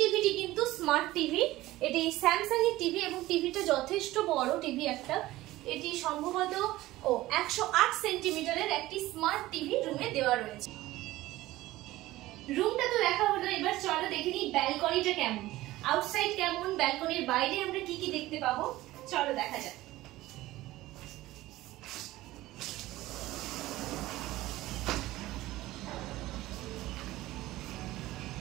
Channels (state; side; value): quieter; left; 17.0 dB